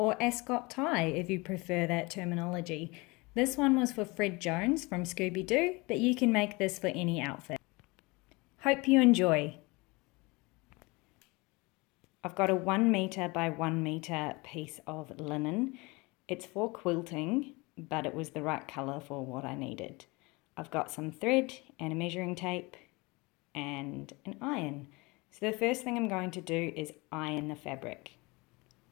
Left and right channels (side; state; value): right; quieter; 25.3 dB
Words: Ascot tie if you prefer that terminology. This one was for Fred Jones from Scooby, but you can make this for any outfit. Hope you enjoy. I've got a 1 meter by 1 meter piece of linen. It's for quilting, but it was the right colour for what I needed. I've got some thread and a measuring tape and an iron. So the first thing I'm going to do is iron the fabric.